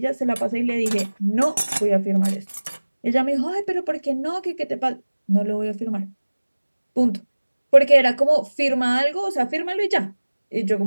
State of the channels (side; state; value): both; inverted; correlation -1.00